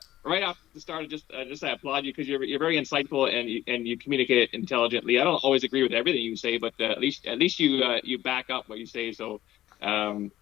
right off the start, I applaud you, because you're very insightful and you communicate it intelligently. I don't always agree with everything you say, but at least you back up what you say. So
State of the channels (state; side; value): quieter; right; 14.1 dB